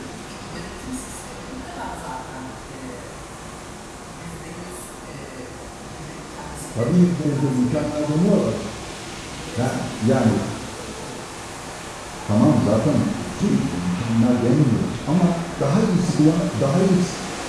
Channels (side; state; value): both; identical; correlation 1.00